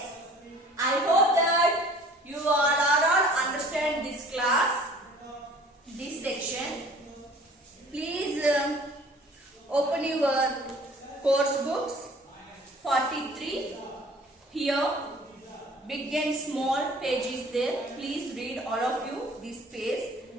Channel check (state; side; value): normal; both; correlation 0.50